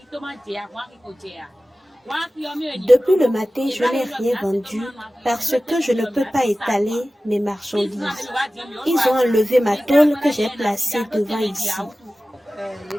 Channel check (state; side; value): normal; both; correlation 0.96